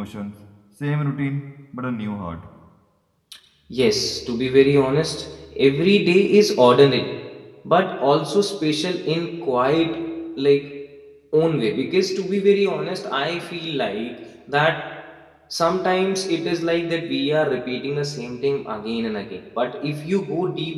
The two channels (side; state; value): both; identical; correlation 1.00